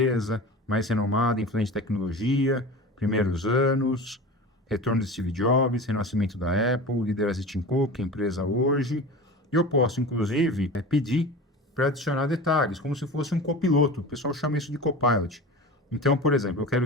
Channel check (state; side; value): normal; both; correlation 0.33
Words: mais renomada, influente em tecnologia, primeiros anos, retorno de Steve Jobs, renascimento da Apple, liderança de Tim Cook, empresa hoje. Eu posso, inclusive, pedir para adicionar detalhes, como se fosse um copiloto. O pessoal chama isso de copilot. Então, por exemplo, eu quero